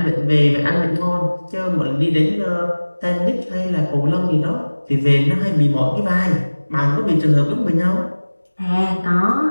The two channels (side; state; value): both; inverted; correlation -1.00